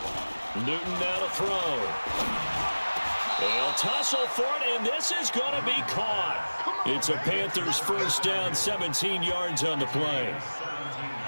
Newton now to throw. They'll tussle for it, and this is going to be caught. It's a Panthers first down, 17 yards on the play.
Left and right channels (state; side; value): inverted; both; correlation -1.00